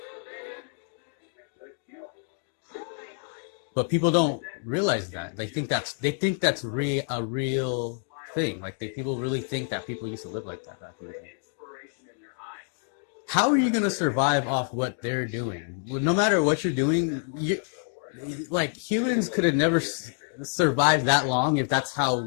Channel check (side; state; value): right; silent; 60 dB below the other